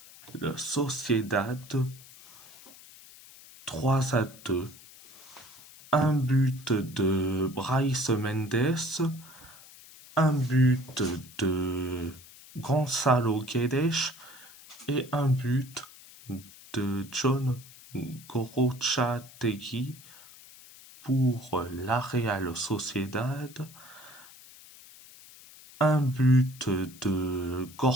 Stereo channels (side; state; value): left; noise; hiss, 20 dB below the sound